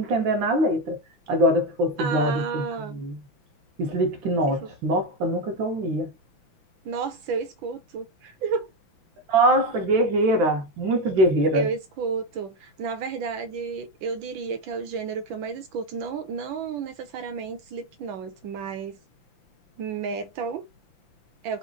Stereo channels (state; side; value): late; left; 5.9 ms